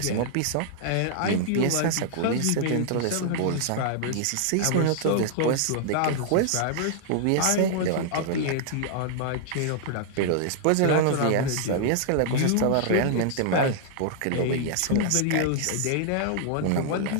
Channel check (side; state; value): both; different; correlation -0.01